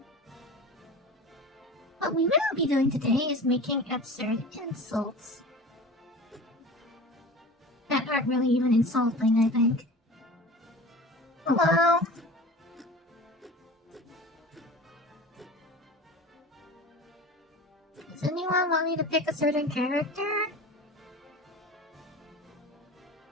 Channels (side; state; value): both; normal; correlation 0.36